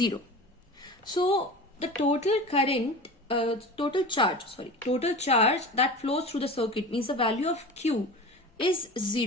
So the total current, total charge that flows through the circuit, means the value of Q is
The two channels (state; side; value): normal; both; correlation 0.33